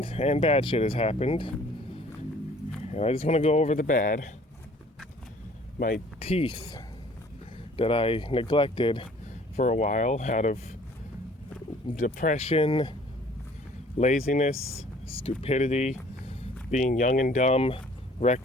and bad shit has happened. And I just want to go over the bad. My teeth that I neglected for a while out of depression, laziness, stupidity, being young and dumb,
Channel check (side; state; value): both; normal; correlation 0.54